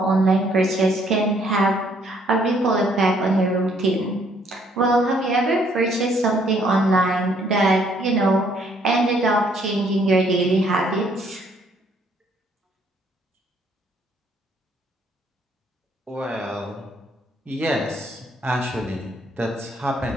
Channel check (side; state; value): both; normal; correlation 0.66